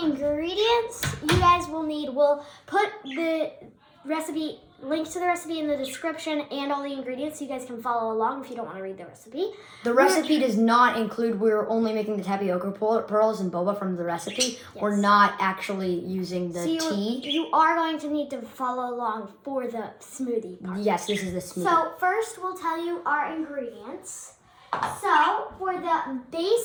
you guys will need, we'll put the recipe, links to the recipe in the description and all the ingredients so you guys can follow along if you don't want to read the recipe. The recipe does not include, we're only making the tapioca pearls and boba from the recipe. Yes. We're not actually using the tea. You are going to need to follow along for the smoothie part. Yes, this is the smoothie. So first we'll tell you our ingredients. So for the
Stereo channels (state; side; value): identical; both; correlation 1.00